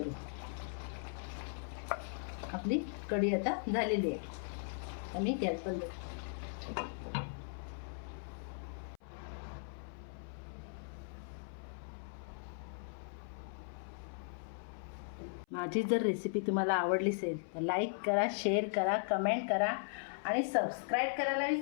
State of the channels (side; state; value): right; silent; 52 dB below the other